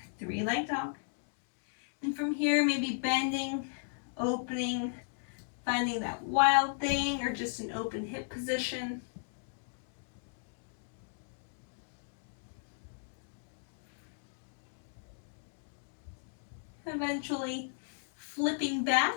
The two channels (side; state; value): right; silent; digital silence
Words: 3-leg dog. And from here, maybe bending, opening, finding that Wild Thing or just an open hip position. Eventually flipping back,